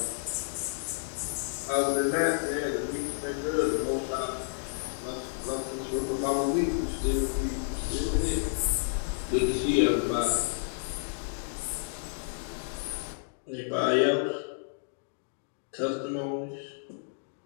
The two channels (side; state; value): right; silent; digital silence